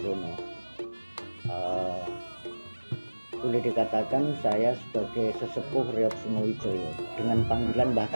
Boleh dikatakan saya sebagai sesepuh Reok Singowijoyo dengan panggilan Mbah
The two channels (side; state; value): both; inverted; correlation -1.00